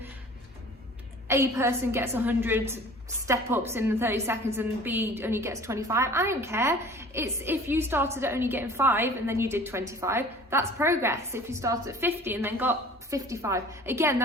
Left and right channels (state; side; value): normal; both; correlation 0.46